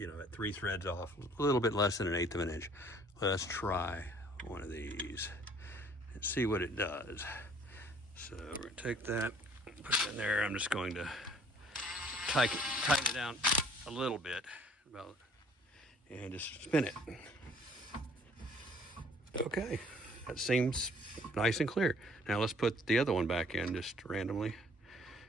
3 threads off, a little bit less than an 1/8 of an inch. Let's try one of these and see what it does. So we're gonna take that, put it in there. I'm just going to tighten it down a little bit, and just spin it. Okay, that seems nice and clear. Now let's put the other one back in just randomly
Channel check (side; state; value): both; normal; correlation 0.57